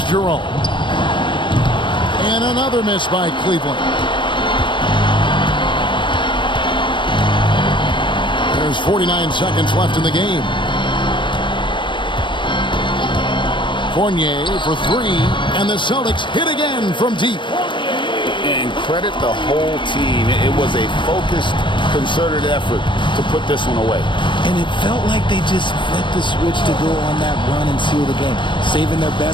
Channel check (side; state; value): right; late; 0.23 ms